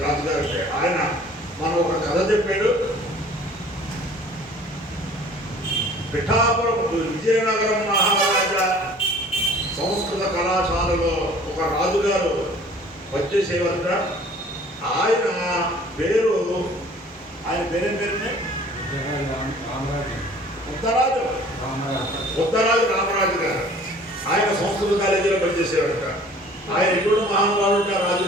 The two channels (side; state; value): both; normal; correlation 0.50